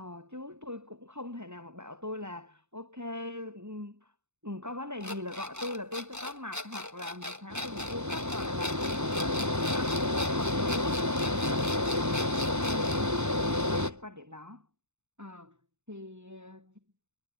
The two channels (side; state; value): left; late; 0.82 ms